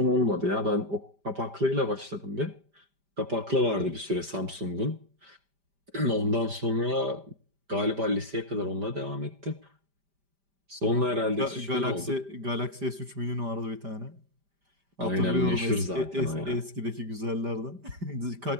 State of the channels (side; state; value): left; late; 5.0 ms